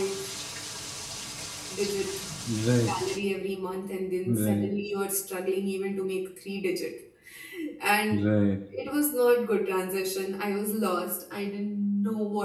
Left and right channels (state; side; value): identical; both; correlation 1.00